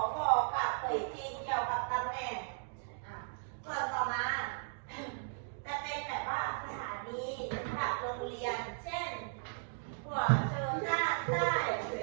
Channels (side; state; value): left; silent; digital silence